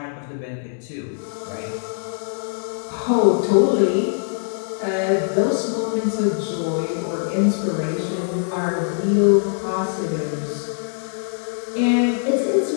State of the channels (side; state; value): right; silent; digital silence